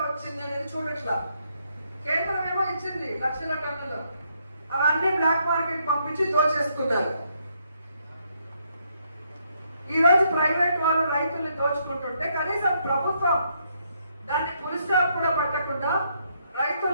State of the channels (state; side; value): inverted; both; correlation -0.74